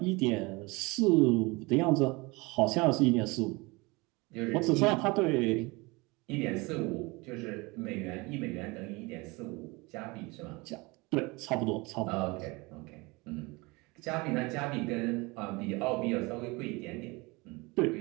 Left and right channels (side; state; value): left; quieter; 25.0 dB